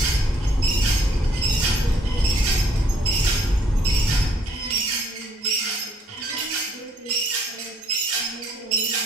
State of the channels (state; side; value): normal; both; correlation 0.65